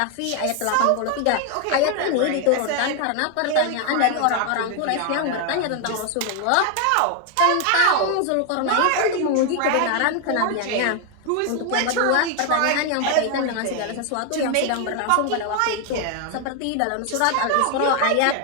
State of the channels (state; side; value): different; both; correlation 0.01